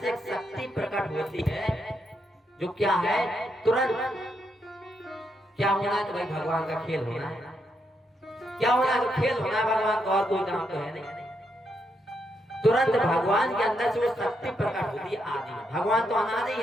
से एक शक्ति प्रकट होती है, जो क्या है? तुरंत क्या होना है? तो भाई भगवान का खेल होना है। क्या होना है? तो खेल होना है भगवान का, और कोई काम तो है नहीं। तुरंत भगवान के अंदर से वो शक्ति प्रकट होती है आदि में। भगवान तो अनादि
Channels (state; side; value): normal; both; correlation 0.80